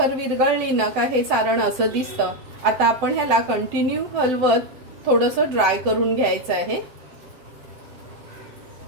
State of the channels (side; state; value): left; late; 7.8 ms